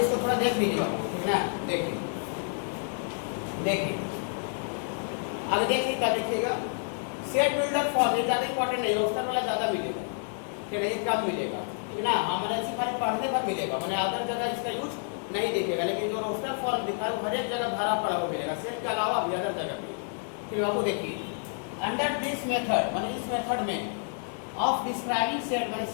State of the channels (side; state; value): right; silent; 58 dB below the other